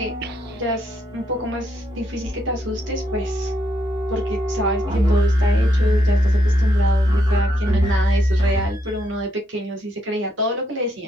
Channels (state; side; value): normal; both; correlation 0.76